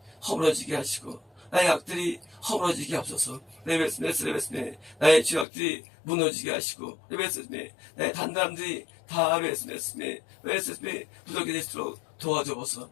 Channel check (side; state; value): right; drops out; at 5.5 s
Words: 허물어지게 하시고 나의 악들이 허물어지게 하옵소서. 레베스메 나의 죄악들이 무너지게 하시고 레베스메 나의 단단함들이 다 레베스메 부족이 될수록 도와줘보소.